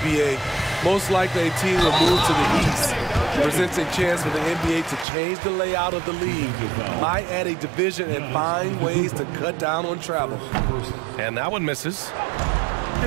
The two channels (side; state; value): left; drops out; at 5.1 s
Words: B.A. Most likely a team will move to the east. Presents a chance for the NBA to change the layout of the league. Might add a division and find ways to cut down on travel. And that one misses.